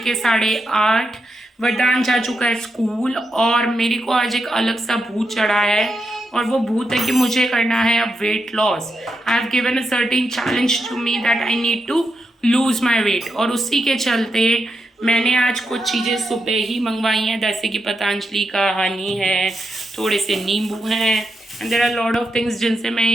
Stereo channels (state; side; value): normal; both; correlation 0.85